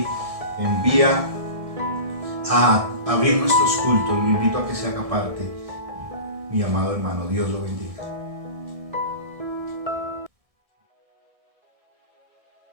envía a abrir nuestros cultos. Lo invito a que se haga parte, mi amado hermano. Dios lo bendiga.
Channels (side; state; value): left; late; 1.6 ms